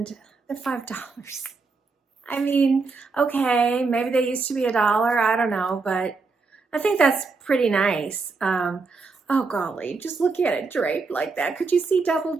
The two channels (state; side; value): quieter; left; 4.3 dB